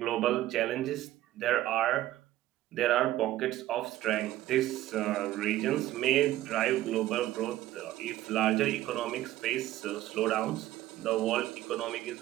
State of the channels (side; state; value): left; quieter; 14.7 dB